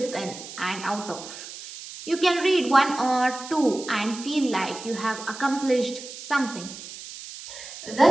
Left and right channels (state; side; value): noise; right; hiss, 13 dB below the sound